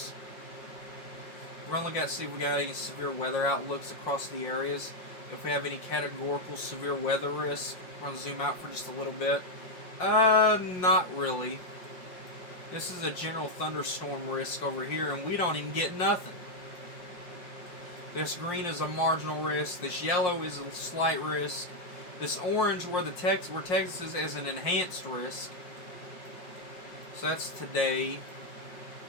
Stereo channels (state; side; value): late; right; 5.6 ms